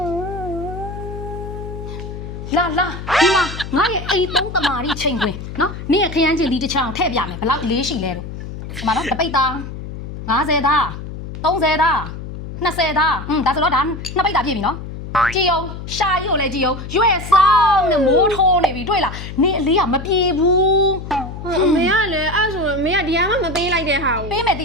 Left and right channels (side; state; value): left; noise; hum, 9 dB below the sound